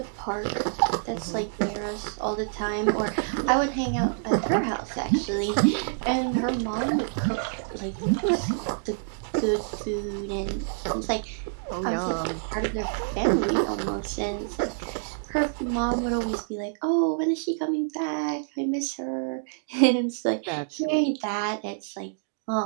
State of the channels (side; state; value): left; silent; digital silence